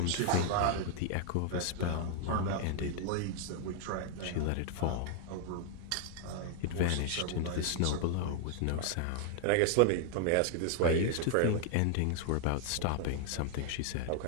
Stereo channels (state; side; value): different; both; correlation 0.00